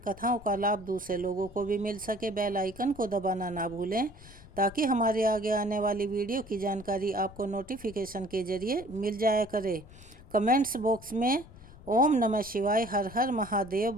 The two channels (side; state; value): left; noise; rumble, 19 dB below the sound